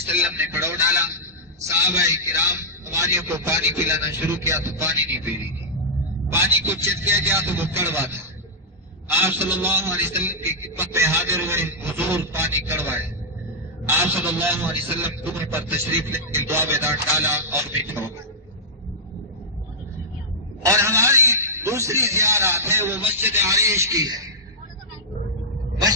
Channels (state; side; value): normal; both; correlation -0.11